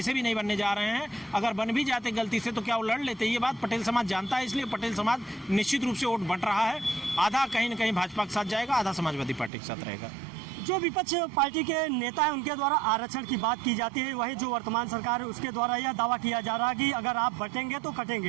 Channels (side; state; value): left; drops out; at 9.5 s